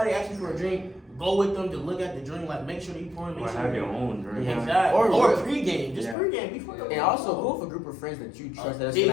asks you for a drink, go with them to look at the drink. Like, make sure that you pouring. Or Make sure have your own drink. Yeah. Exactly. Or- Or pregame. Just Yeah. pregame before the And also go with a group of friends that you trust that's big-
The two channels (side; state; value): right; drops out; at 6.2 s